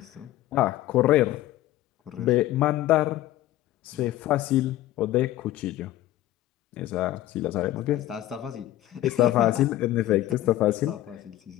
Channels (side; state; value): right; quieter; 14.7 dB